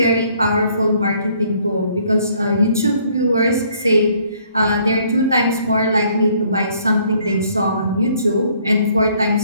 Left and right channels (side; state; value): both; inverted; correlation -0.63